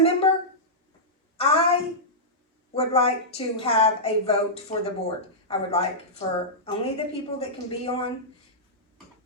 member, I would like to have a vote for the board. I would like for only the people that can be on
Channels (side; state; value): both; normal; correlation -0.13